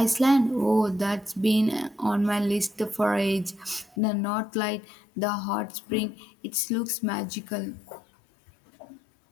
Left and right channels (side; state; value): right; drops out; at 4.0 s